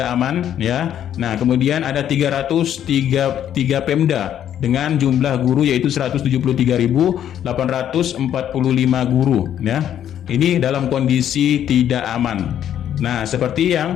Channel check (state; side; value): quieter; right; 10.3 dB